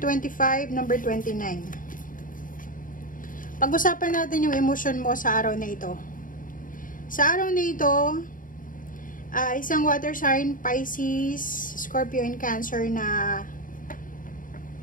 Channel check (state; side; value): late; right; 0.39 ms